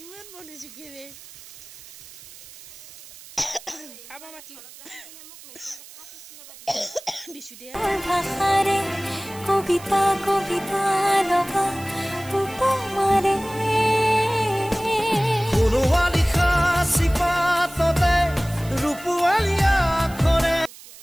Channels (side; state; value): right; noise; hiss, 18 dB below the sound